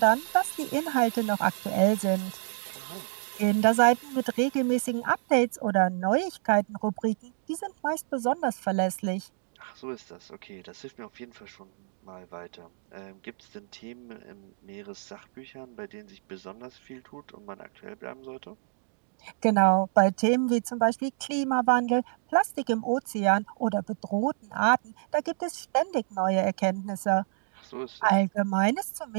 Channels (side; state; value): left; silent; digital silence